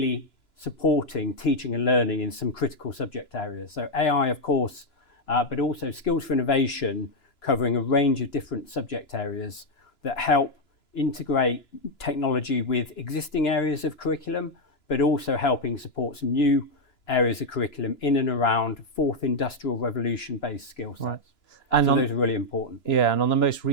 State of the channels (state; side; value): late; right; 2.9 ms